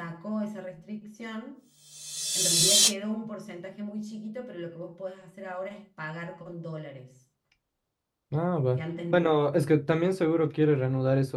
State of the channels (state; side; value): identical; both; correlation 1.00